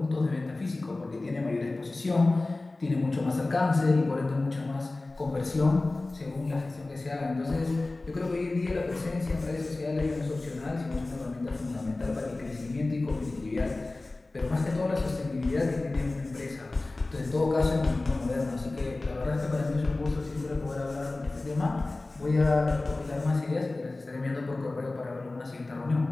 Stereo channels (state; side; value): quieter; right; 3.1 dB